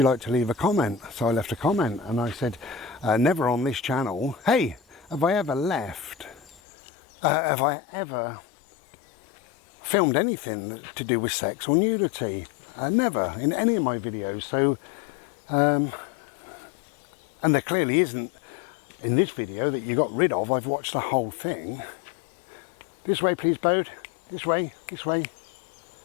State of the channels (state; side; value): drops out; right; at 6.6 s